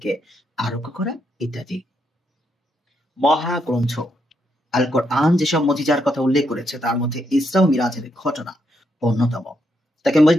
আরোগ্য করা ইত্যাদি। মহাগ্রন্থ আল কোরআন যেসব মুজিজার কথা উল্লেখ করেছে, তার মধ্যে ইসরা ও মিরাজের ঘটনা অন্যতম। তাকে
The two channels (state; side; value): normal; both; correlation 0.78